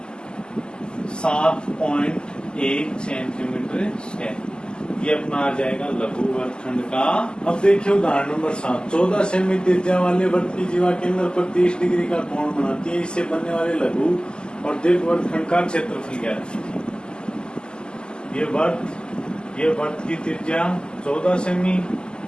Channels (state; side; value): late; right; 0.047 ms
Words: 7.1 सेंटीमीटर स्क्वायर। ये अपना आ जाएगा लघु वर्गखंड का। अब देखिए उदाहरण नंबर 7, 14 सेमी त्रिज्या वाले वृत्त की जीवा केंद्र पर 30 डिग्री का कोण बनाती है, इससे बनने वाले लघु और दीर्घ वर्गखंड का क्षेत्रफल क्या है। ये वृत्त की त्रिज्या 14 सेमी,